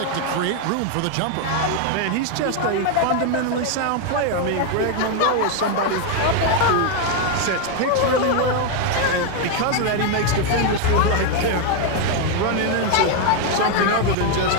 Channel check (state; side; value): different; both; correlation 0.01